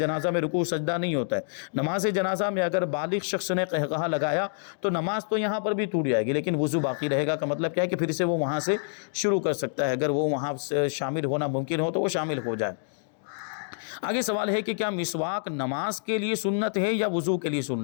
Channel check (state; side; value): silent; right; digital silence